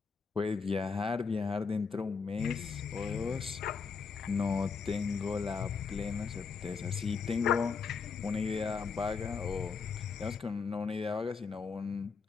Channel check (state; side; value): quieter; right; 5.4 dB